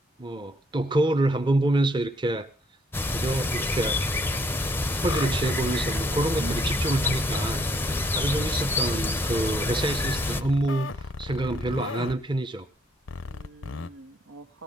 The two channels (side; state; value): both; normal; correlation 0.68